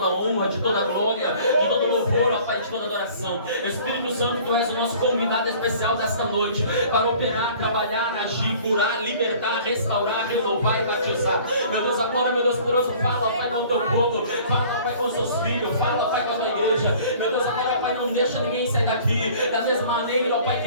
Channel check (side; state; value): both; inverted; correlation -0.50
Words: honra, de toda glória, de todo louvor, ó Pai, de toda adoração. Espírito Santo, Tu és o nosso convidado especial desta noite, para operar, trabalhar, agir, curar, libertar, restaurar, renovar e batizar. Meu Deus, agora, meu Deus poderoso, fala, Pai, com o Teu povo, fala, Pai, com os Teus filhos, fala, Pai, com a Tua igreja. Meu Deus, agora, Pai, não deixa ninguém sair daqui da mesma maneira, ó Pai,